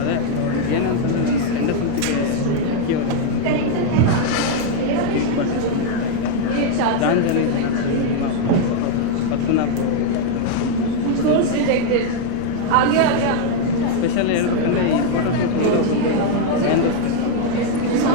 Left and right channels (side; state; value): both; different; correlation 0.01